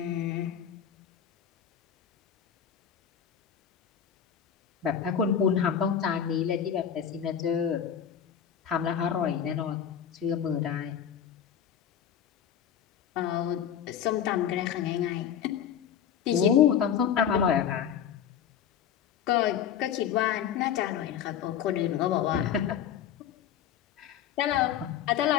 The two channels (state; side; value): quieter; right; 8.9 dB